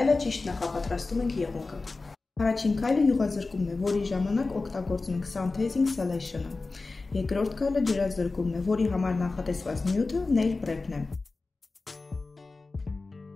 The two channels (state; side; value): quieter; right; 3.6 dB